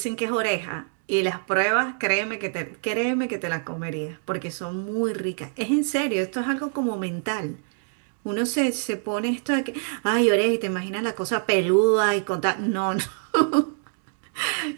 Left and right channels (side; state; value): left; silent; 60 dB below the other